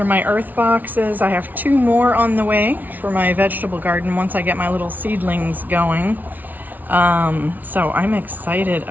my earth boxes. I have 2 more on the way for my vegetable garden once I get my little seedlings going. So I'm excited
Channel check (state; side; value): late; left; 0.081 ms